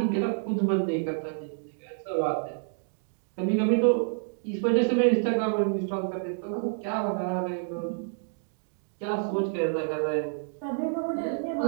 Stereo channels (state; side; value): silent; left; digital silence